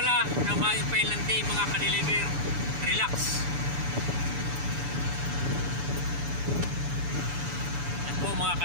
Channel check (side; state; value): left; late; 7.0 ms